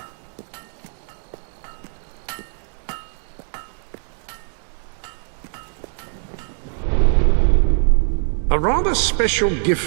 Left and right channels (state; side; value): silent; left; digital silence